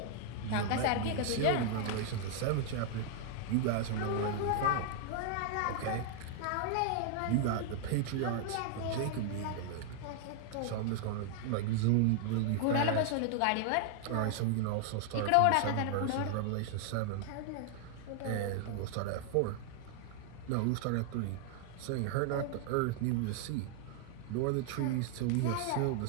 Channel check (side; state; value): both; different; correlation 0.00